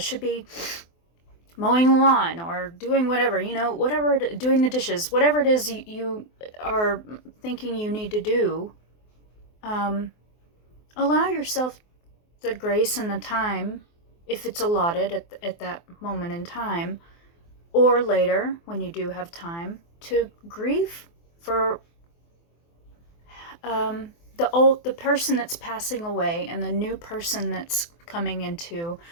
be mowing the lawn or doing whatever, whatever, doing the dishes, whatever it is you are thinking you need to do. Allow yourself the grace and the time, if it's allotted at that moment in time, or later when you do have time, to grieve for the person that's passing away and the new person that's coming into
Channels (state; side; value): late; right; 24 ms